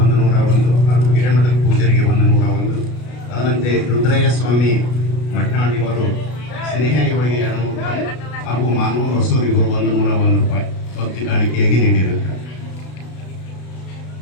ಹಾಗೂ ಹಿರೇಮಠದ ಪೂಜ್ಯರಿಗೆ 101. ಅದರಂತೆ ರುದ್ರಯ್ಯ ಸ್ವಾಮಿ ಮಟ್ನಾಳ್ ಇವರು ಸ್ನೇಹ ಇವರಿಗೆ 200 ರೂಪಾಯಿ ಹಾಗೂ ಮಾನವ ಹೊಸೂರು ಇವರು 101 ರೂಪಾಯಿ ಭಕ್ತಿ ಕಾಣಿಕೆಯಾಗಿ ನೀಡಿರುತ್ತಾರೆ.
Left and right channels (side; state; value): right; late; 33 ms